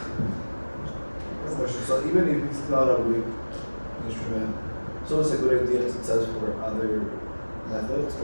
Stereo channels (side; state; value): both; inverted; correlation -1.00